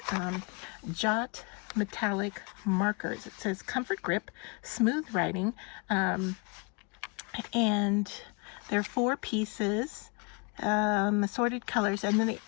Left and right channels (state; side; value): quieter; right; 31.6 dB